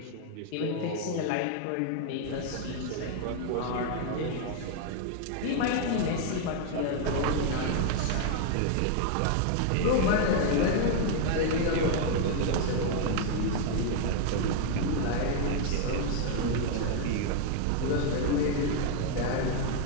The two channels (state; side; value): different; both; correlation 0.00